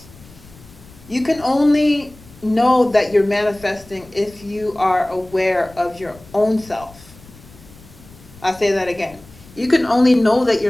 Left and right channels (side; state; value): left; noise; rumble, 22 dB below the sound